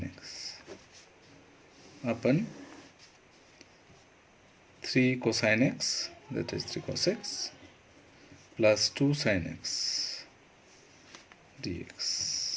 x upon 3 cosine x, that is 3 cos x, plus 2 sin x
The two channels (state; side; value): identical; both; correlation 1.00